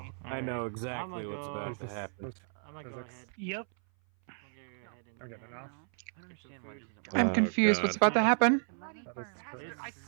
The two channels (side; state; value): left; silent; 56 dB below the other